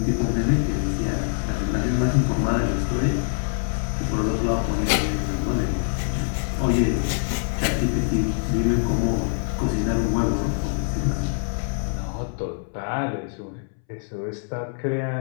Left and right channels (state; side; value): silent; right; 62 dB below the other